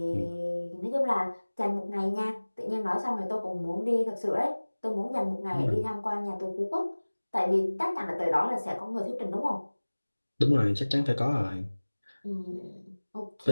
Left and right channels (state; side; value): inverted; both; correlation -1.00